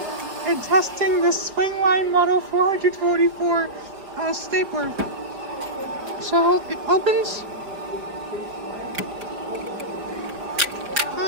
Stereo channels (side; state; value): left; late; 4.9 ms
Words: and testing the Swingline Model 444 stapler. So it opens.